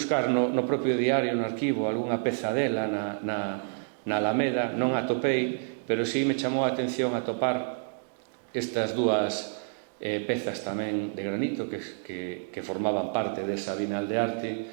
no propio diario, no arquivo, algunha peza dela na Alameda, non a atopei, pero sí me chamou a atención atopar estas dúas pezas tamén de granito que formaban parte desa Bienal de Arte.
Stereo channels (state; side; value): silent; left; digital silence